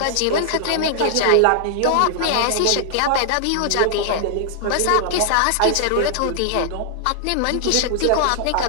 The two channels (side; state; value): both; different; correlation -0.01